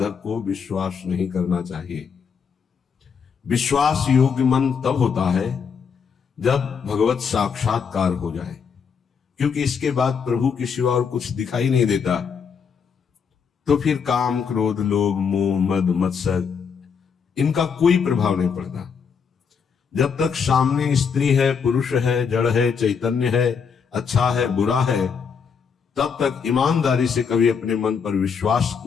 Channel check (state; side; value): quieter; right; 6.3 dB